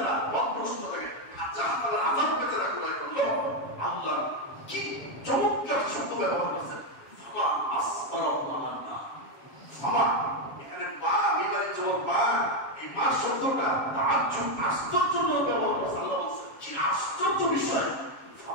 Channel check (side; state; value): right; late; 7.3 ms